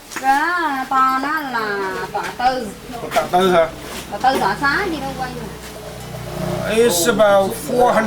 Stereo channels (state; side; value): identical; both; correlation 1.00